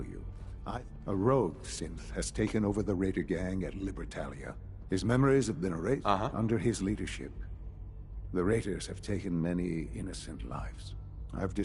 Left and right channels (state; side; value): identical; both; correlation 1.00